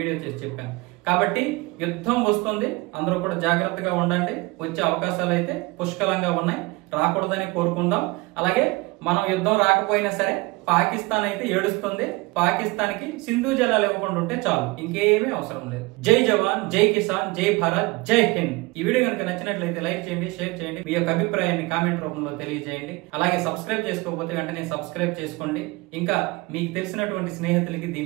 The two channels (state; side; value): quieter; left; 23.8 dB